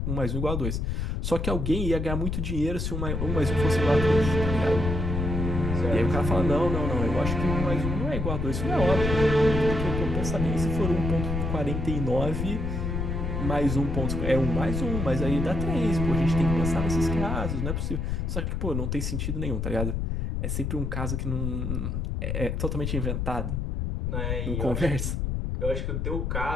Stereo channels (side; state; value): left; noise; rumble, 1 dB below the sound